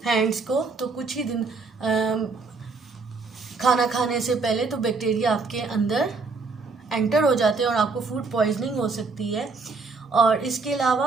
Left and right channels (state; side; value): quieter; left; 4.2 dB